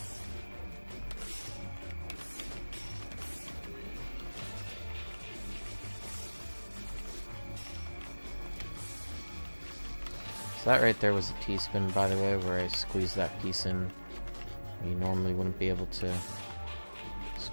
So that right there was a T-spin, by the way, where I squeezed that piece in. You normally wouldn't be able to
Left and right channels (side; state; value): both; inverted; correlation -1.00